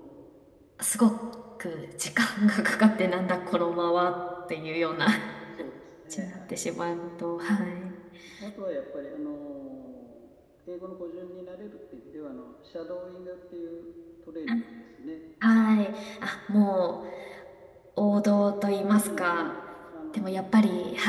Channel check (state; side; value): identical; both; correlation 1.00